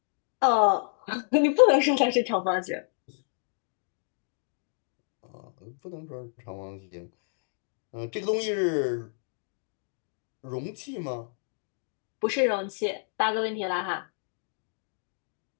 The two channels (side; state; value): right; silent; digital silence